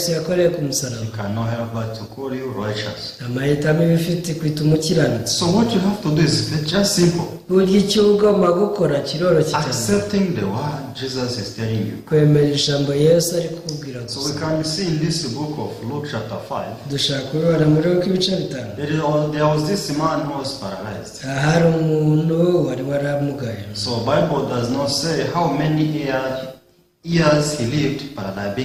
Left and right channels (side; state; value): both; identical; correlation 1.00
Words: yakoreye ku musaraba, He cannot help but to call you righteous. amahitamo iba ifite kwita umukiranutsi. So what you have to do is just simple. Burya icyo ugomba gukora kiroroshye cyane, Accepting the word Jesus is telling you. kwemera ijambo Yesu ari kukubwira So we gusa. can see in this book of Luke chapter 5, Dushaka kubibona muri Luka ibice 5. there was this man who was paralyzed. Hari umuntu wari waramugaye. So Bible does not say how many years he lived